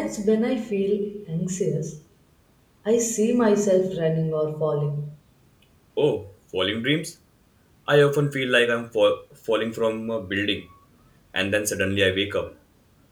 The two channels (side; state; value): both; identical; correlation 1.00